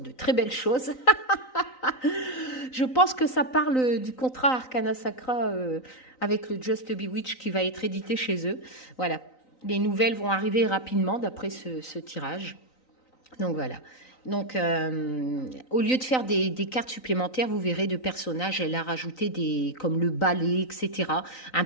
très belles choses. Je pense que ça parle du contrat Arcana Sacra avec le Just Bewitch qui va être édité chez eux. Voilà, les nouvelles vont arriver rapidement d'après ce tirage. Donc voilà. Donc, au lieu de faire des cartes supplémentaires, vous verrez de personnages, elle a rajouté comme le balai, etc. Un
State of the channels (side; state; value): right; late; 3.9 ms